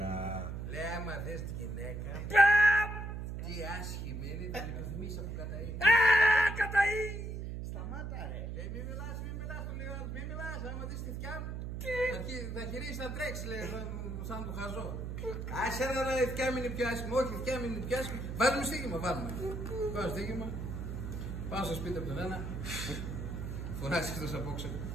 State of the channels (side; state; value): right; noise; hum, 5 dB below the sound